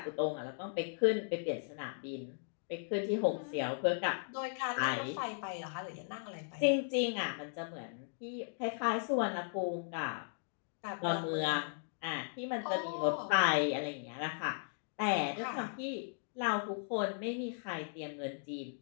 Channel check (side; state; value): right; silent; digital silence